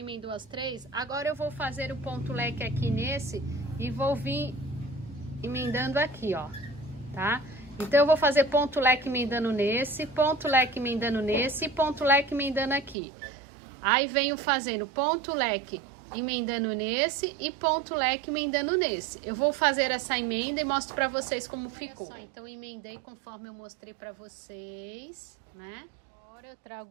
as 3. Agora, eu vou fazer o ponto leque aqui nesse e vou vir emendando aqui, ó, tá? Então, eu vou fazer ponto leque emendando nesse, ponto leque emendando nesse e ponto leque emendando aqui. Aí, venho fazendo ponto leque emendando nesse e ponto leque emendando nesse. Eu vou fazer essa emenda e mostro pra vocês como ficou. Só, então, emendei conforme eu mostrei pra vocês, né? Agora, eu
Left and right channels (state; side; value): drops out; left; at 13.0 s